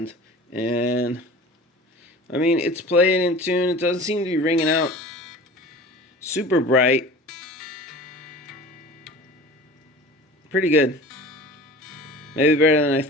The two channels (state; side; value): normal; both; correlation 0.40